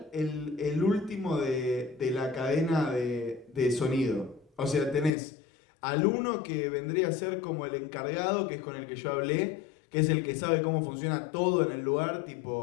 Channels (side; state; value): right; drops out; at 5.1 s